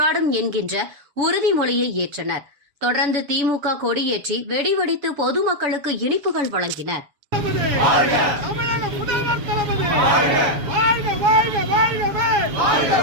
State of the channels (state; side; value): late; left; 7.0 ms